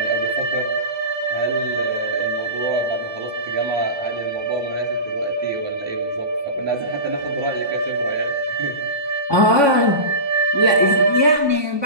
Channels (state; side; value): late; left; 1.2 ms